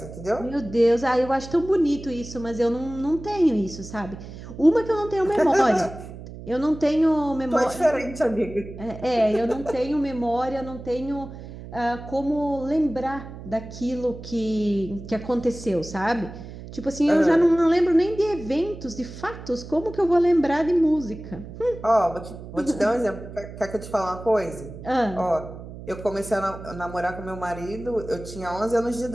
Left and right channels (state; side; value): noise; right; hum, 13 dB below the sound